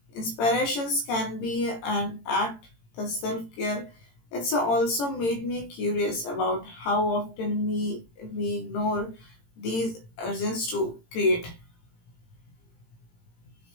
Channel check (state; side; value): late; right; 18 ms